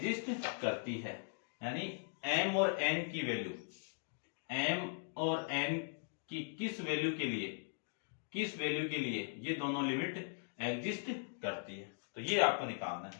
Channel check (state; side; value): silent; right; digital silence